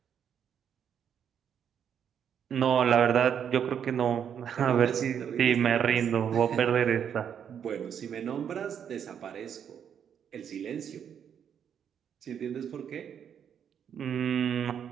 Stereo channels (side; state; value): left; quieter; 8.3 dB